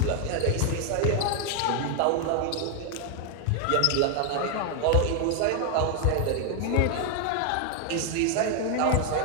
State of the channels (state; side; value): different; both; correlation 0.00